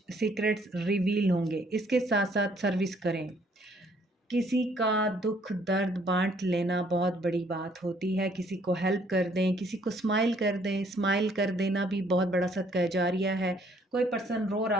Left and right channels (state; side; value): normal; both; correlation 0.64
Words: सीक्रेट्स रिवील होंगे। इसके साथ साथ सर्विस करें। किसी का दुख दर्द बांट लेना बहुत बड़ी बात होती है। किसी को हेल्प कर दें, किसी को स्माइल कर दें, स्माइल कर देना भी बहुत बड़ा सदका जारिया है। कोई पर्सन रो